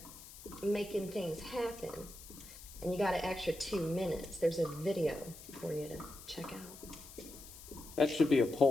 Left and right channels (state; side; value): noise; left; hiss, 16 dB below the sound